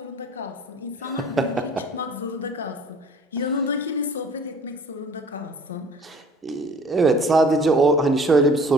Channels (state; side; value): normal; both; correlation 0.50